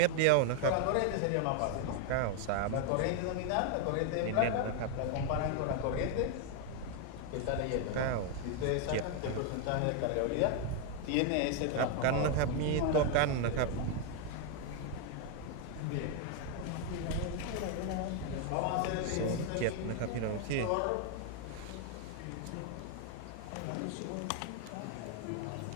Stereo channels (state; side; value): different; both; correlation 0.01